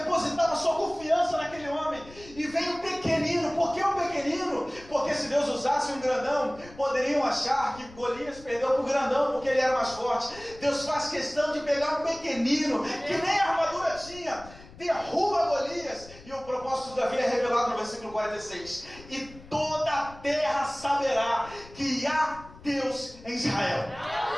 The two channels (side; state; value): left; noise; rumble, 20 dB below the sound